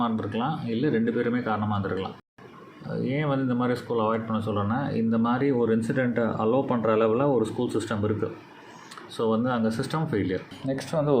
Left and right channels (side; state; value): both; identical; correlation 1.00